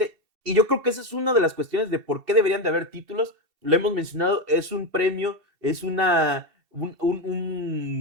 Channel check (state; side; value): late; left; 2.7 ms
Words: y yo creo que esa es una de las cuestiones de por qué deberían de haber títulos. Lo hemos mencionado, es un premio, es un